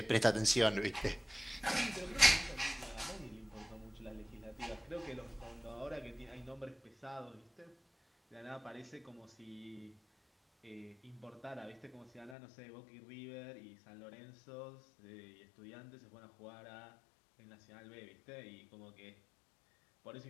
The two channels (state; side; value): drops out; right; at 12.4 s